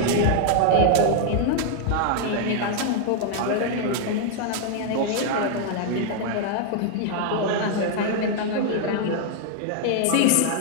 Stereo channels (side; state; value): both; different; correlation 0.00